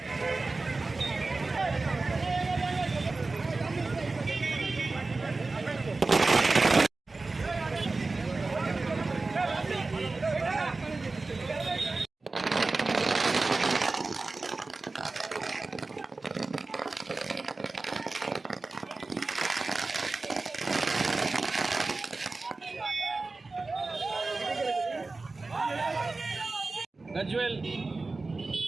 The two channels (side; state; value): left; quieter; 3.6 dB